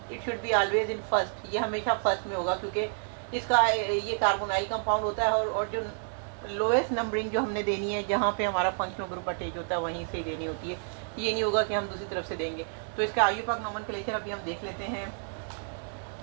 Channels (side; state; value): left; silent; digital silence